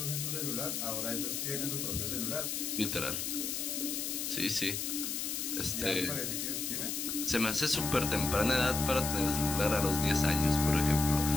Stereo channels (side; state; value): left; noise; hiss, 2 dB below the sound